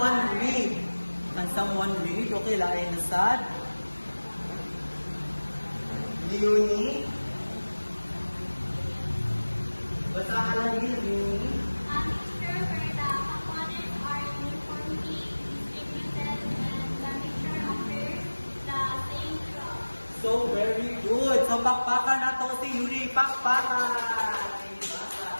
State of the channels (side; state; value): both; inverted; correlation -1.00